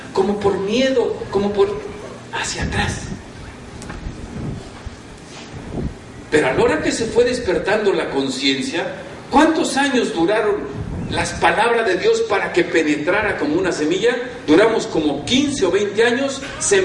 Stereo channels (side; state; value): both; identical; correlation 1.00